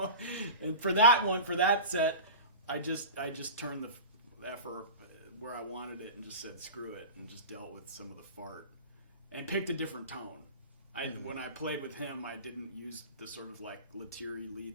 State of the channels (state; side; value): inverted; both; correlation -0.32